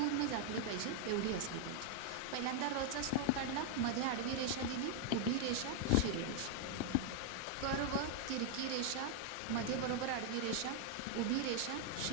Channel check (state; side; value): different; both; correlation 0.00